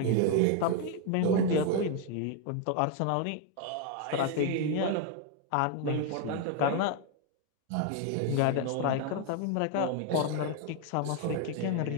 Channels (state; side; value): different; both; correlation 0.00